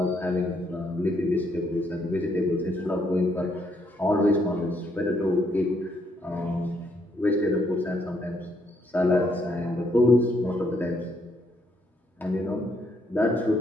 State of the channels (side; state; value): both; normal; correlation 0.73